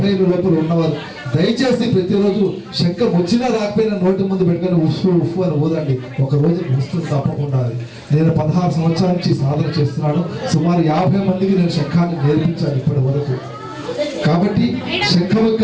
ఏళ్ళ లోపల ఉన్నవారు దయచేసి ప్రతిరోజు శంఖం వచ్చినా రాకపోయినా నోటి ముందు పెట్టుకొని ఉఫ్ఫు ఉఫ్ఫు అని ఊదండి. ఒక రోజు వస్తుంది తప్పకుండా. నేను 16 సంవత్సరాల నుంచి సాధన చేస్తున్నాను. సుమారు 50 మందికి నేను శంఖాన్ని నేర్పించాను ఇప్పటి వరకు. కాబట్టి శంఖం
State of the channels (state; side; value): identical; both; correlation 1.00